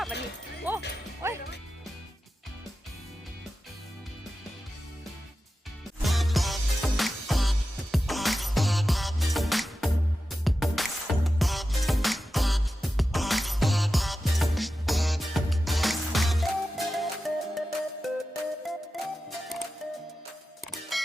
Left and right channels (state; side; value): normal; both; correlation 0.92